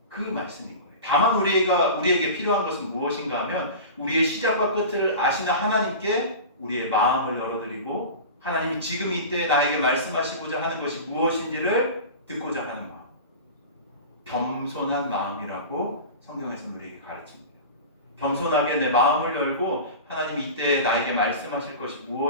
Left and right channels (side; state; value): both; inverted; correlation -0.32